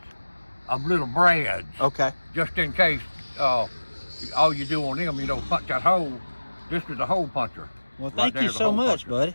of little brads. Okay. Just in case all you do on them, punch that hole. This is a hole puncher. Well, thank you so much, buddy.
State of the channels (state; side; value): inverted; both; correlation -1.00